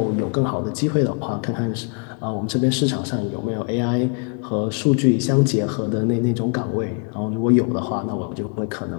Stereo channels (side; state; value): right; quieter; 39.2 dB